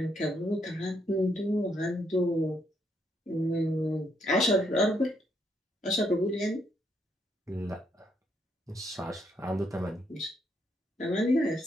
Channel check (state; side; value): normal; both; correlation 0.75